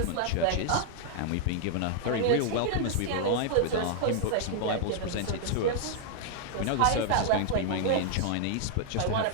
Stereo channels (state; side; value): different; both; correlation -0.01